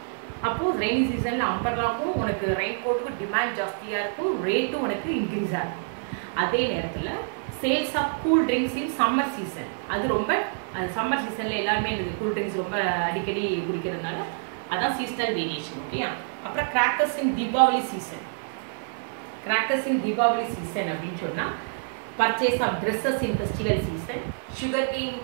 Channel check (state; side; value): silent; left; digital silence